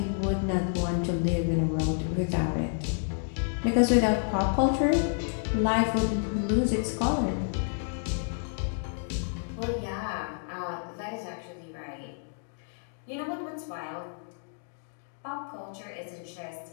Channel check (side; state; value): right; silent; digital silence